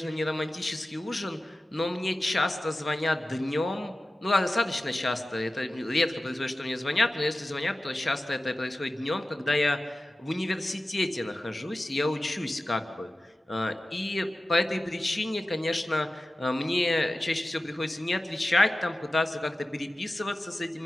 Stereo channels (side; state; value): both; normal; correlation 0.95